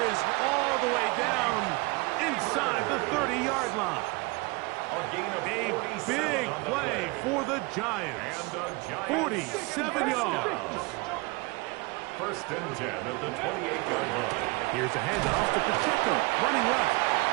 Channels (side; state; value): left; quieter; 26.2 dB